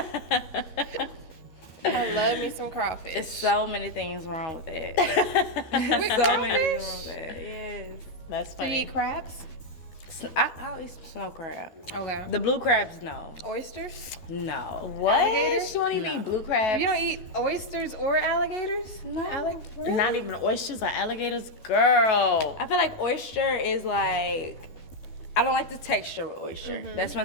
I love me some crawfish. There's so many things wrong with that. so many things wrong with that. Yes. That's Do you funny. eat crabs? I'll eat snow crab. Okay. The blue crabs, no. Oysters? No. What? Alligators? She won't even No. eat blue crabs. You don't eat oysters or alligators? No. Really? Not even oysters or alligators, girl. I feel like oyster is like, I don't like the texture with oyster. That's my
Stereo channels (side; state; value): right; late; 12 ms